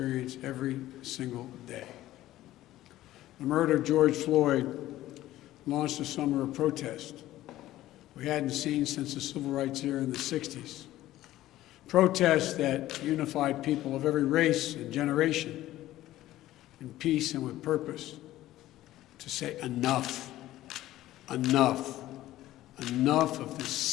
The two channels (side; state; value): right; quieter; 14.9 dB